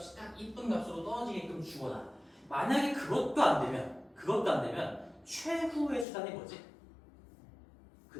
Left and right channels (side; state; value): right; drops out; at 6.1 s